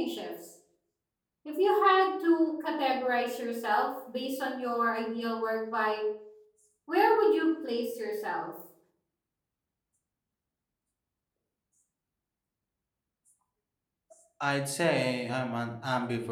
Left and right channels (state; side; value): identical; both; correlation 1.00